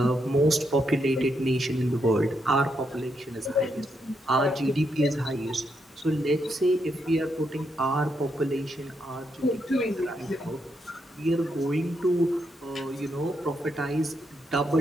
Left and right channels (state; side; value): normal; both; correlation 0.80